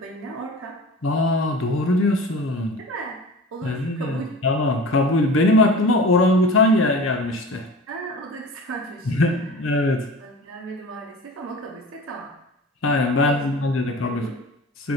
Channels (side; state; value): both; normal; correlation 0.37